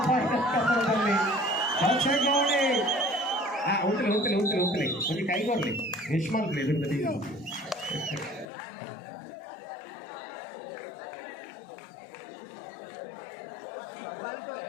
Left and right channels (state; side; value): drops out; right; at 8.5 s